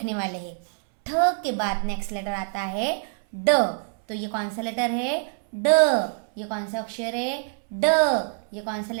वाले हैं। ठ के बाद नेक्स्ट लेटर आता है ड। तो ये कौन सा लेटर है? ड। ये कौन सा अक्षर है? ड। ये कौन सा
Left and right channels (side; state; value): left; silent; 62 dB below the other